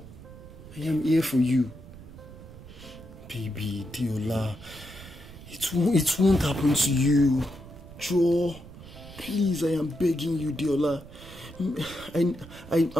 I am here for you. Baby, Deola. It won't happen to you. Joe, please, I am begging you, Deola.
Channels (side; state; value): right; noise; rumble, 17 dB below the sound